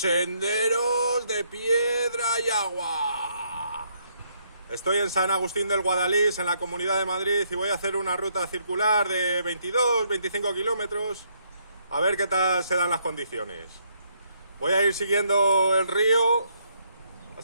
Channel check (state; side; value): inverted; both; correlation -0.72